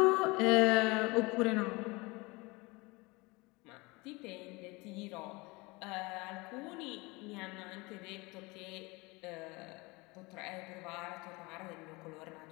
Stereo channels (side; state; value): right; quieter; 24.9 dB